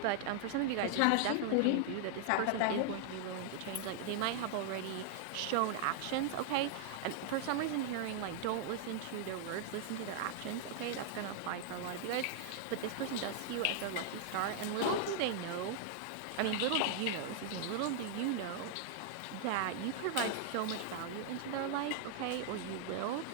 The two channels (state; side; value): different; both; correlation 0.00